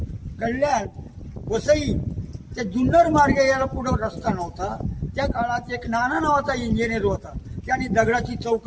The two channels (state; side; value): identical; both; correlation 1.00